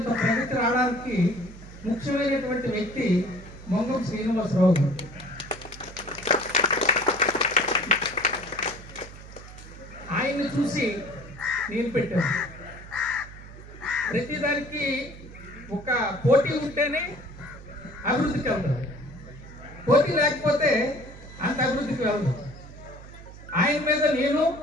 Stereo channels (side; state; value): right; noise; hum, 16 dB below the sound